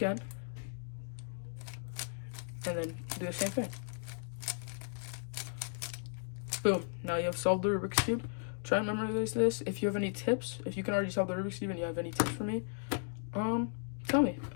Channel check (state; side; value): silent; right; digital silence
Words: And then do the same thing. Boom. Now you have solved the Rubik's Cube. Try and memorize this. If you have any tips, if you can already solve the Rubik's Cube and you have any tips for me, tell me.